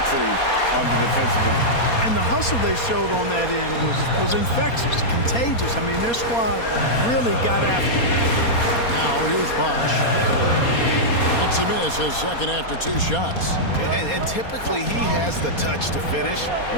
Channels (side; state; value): right; late; 4.2 ms